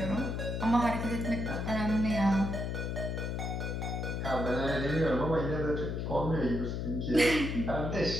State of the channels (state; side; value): noise; left; hum, 2 dB below the sound